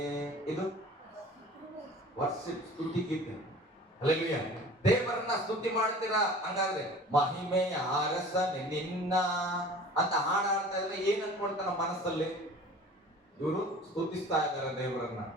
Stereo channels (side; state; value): both; normal; correlation 0.43